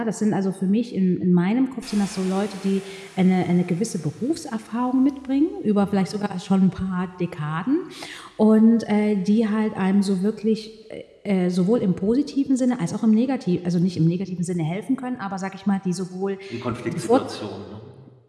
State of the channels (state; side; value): identical; both; correlation 1.00